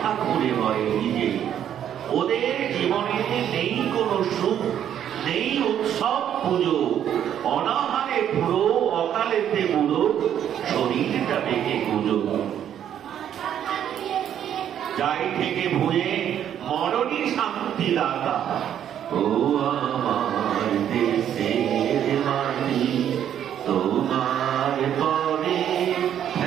ঘুরে মরে নিজে ওদের জীবনে নেই কোনো সুখ নেই উৎসব পুজো অনাহারে পুরো অকালেতে বুড়ো শরীরটা বেঁকে গুজো যাই থেকে ভুয়ে মরণই শান্তি দাতা ও আমার দেশের মাটি তোমার পরে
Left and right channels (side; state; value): left; quieter; 9.9 dB